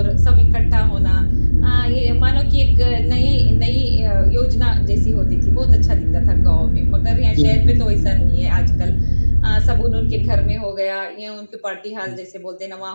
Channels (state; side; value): inverted; both; correlation -1.00